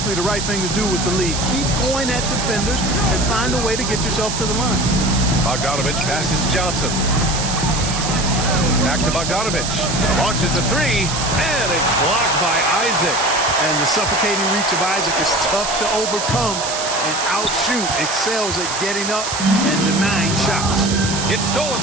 the right thing to do with the lead. Keep going at defenders and find a way to get yourself to the line. Bogdanovich passes to Johnson. Back to Bogdanovich. Launches a three, and it's blocked by Isaac. And the suffocating reach of Isaac is tough to overcome and outshoot. Excels at getting up and denying shots. It's stolen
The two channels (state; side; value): noise; right; hiss, 4 dB below the sound